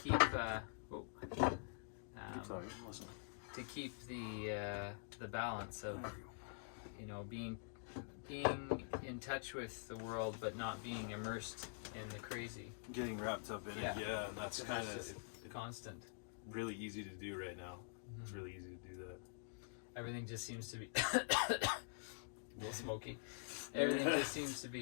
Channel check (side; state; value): right; silent; digital silence